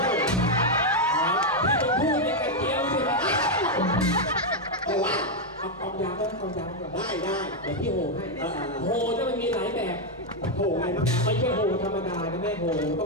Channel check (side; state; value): both; normal; correlation 0.01